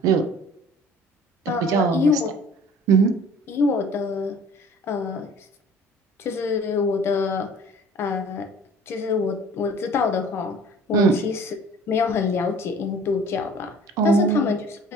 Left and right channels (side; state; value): both; normal; correlation 0.48